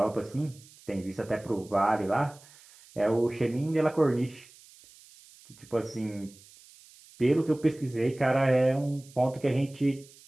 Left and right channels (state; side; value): noise; right; hiss, 24 dB below the sound